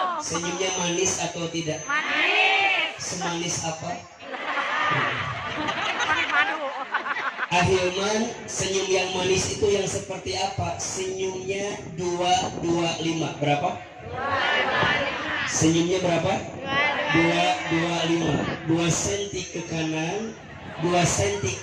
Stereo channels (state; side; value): identical; both; correlation 1.00